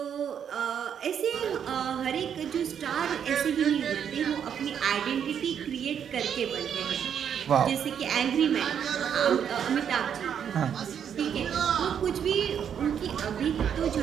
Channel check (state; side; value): quieter; left; 8.3 dB